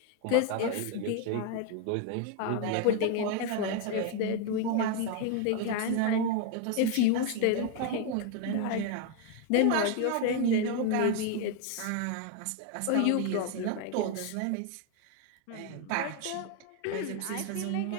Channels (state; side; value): different; both; correlation 0.01